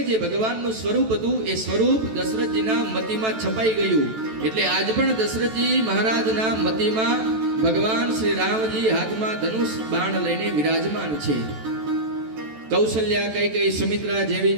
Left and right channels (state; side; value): late; left; 14 ms